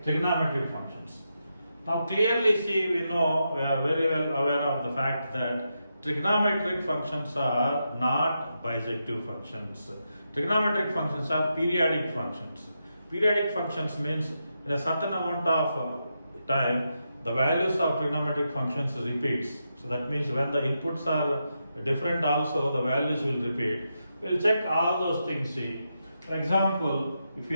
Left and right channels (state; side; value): inverted; both; correlation -0.85